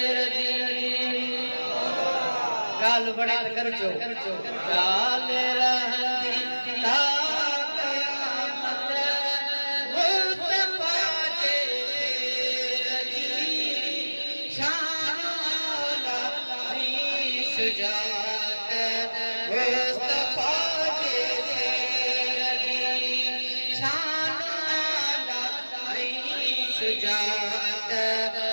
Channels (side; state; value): both; inverted; correlation -1.00